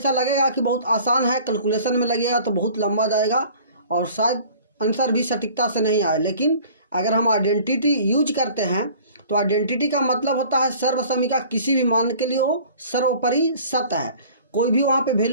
लगेगा कि बहुत आसान है, कैलकुलेशन में लगेगा तो बहुत लंबा जाएगा और शायद आंसर भी सटीकता से नहीं आए। लेकिन अगर हम आइडेंटिटी यूज करते हैं तो आइडेंटिटी का मतलब होता है सर्वसमीका किसी भी मान के लिए हो सर्वोपरि सत्य है। कोई भी वहाँ पे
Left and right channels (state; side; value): inverted; both; correlation -0.48